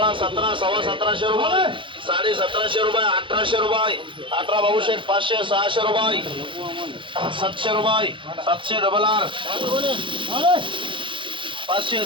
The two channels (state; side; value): late; left; 0.24 ms